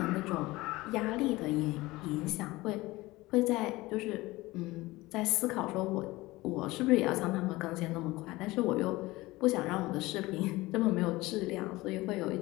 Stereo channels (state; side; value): quieter; right; 20.0 dB